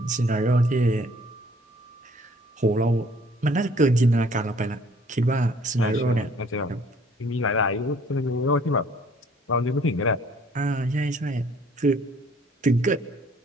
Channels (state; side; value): normal; both; correlation 0.58